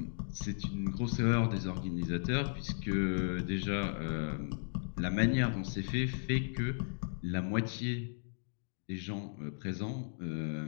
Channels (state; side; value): silent; right; digital silence